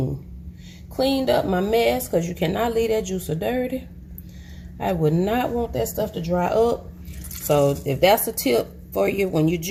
Cleaned up my mess because you cannot leave that juicer dirty. I would not want that stuff to dry up. So if that's a tip for you when you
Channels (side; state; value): both; identical; correlation 1.00